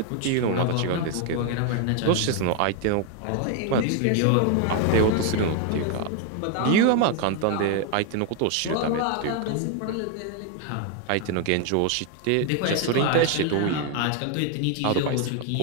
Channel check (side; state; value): both; different; correlation 0.01